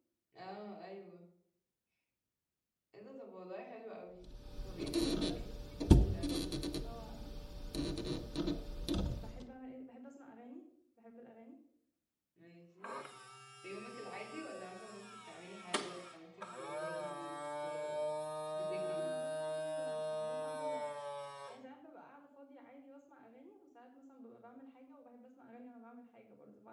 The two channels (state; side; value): identical; both; correlation 1.00